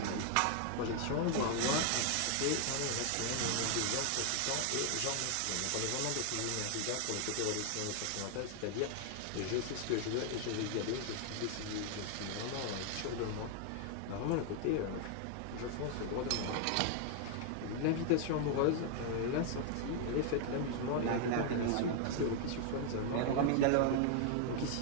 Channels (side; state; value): both; different; correlation 0.00